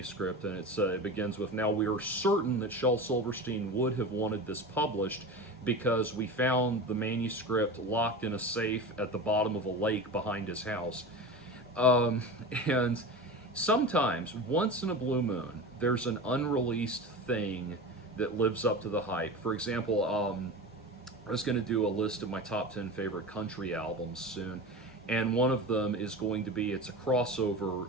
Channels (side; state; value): both; normal; correlation 0.29